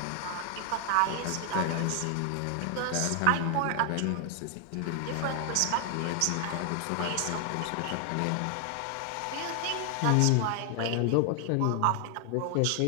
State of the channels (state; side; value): different; both; correlation 0.00